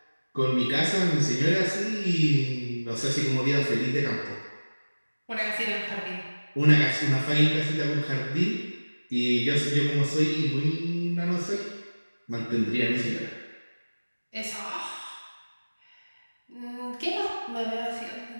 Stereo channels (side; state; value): both; inverted; correlation -1.00